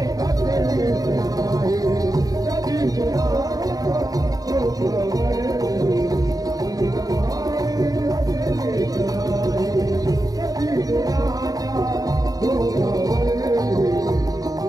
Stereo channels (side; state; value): left; late; 0.18 ms